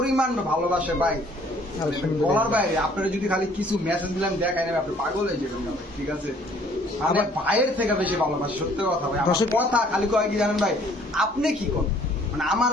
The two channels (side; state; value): both; normal; correlation 0.59